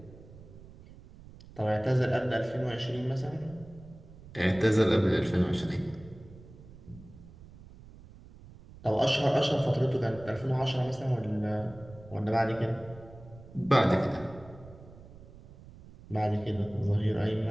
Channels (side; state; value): right; noise; rumble, 19 dB below the sound